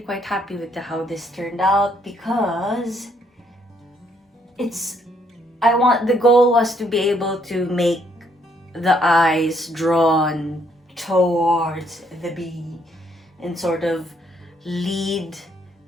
happy with how this turned out, because the goal was to be able to make the eyes drawn towards the bee and sort of lead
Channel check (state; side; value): normal; both; correlation 0.70